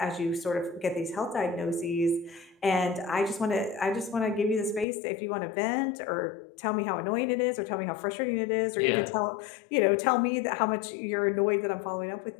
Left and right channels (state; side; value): drops out; right; at 4.9 s